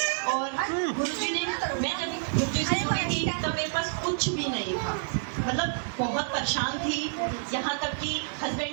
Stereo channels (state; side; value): silent; left; digital silence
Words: और गुरु जी ने, मैं जब गुरु जी से जुड़ी थी तब मेरे पास कुछ भी नहीं था, मतलब बहुत परेशान थी, यहाँ तक कि